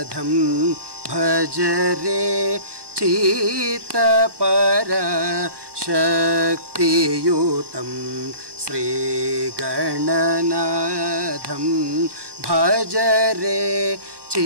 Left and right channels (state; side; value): late; left; 1.2 ms